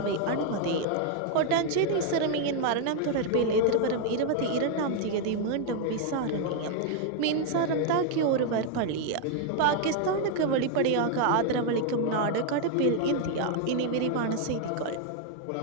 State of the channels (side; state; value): both; different; correlation 0.00